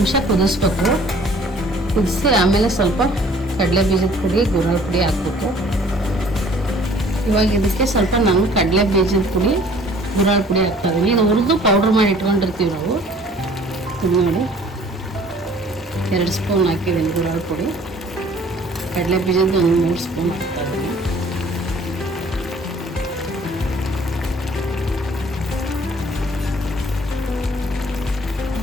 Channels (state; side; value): normal; both; correlation 0.54